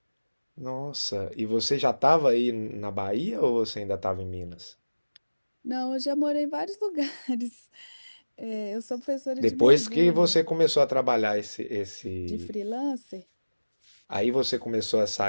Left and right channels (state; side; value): inverted; both; correlation -1.00